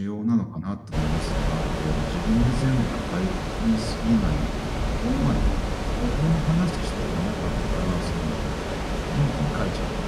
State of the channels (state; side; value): identical; both; correlation 1.00